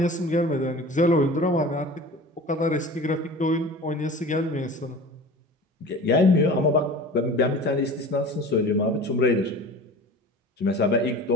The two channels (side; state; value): both; normal; correlation 0.38